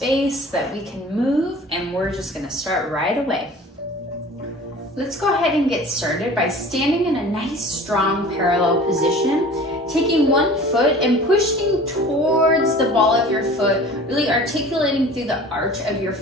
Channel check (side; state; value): both; normal; correlation 0.43